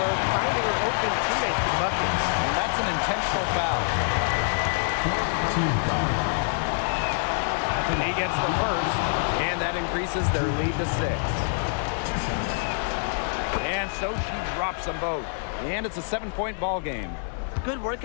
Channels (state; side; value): silent; right; digital silence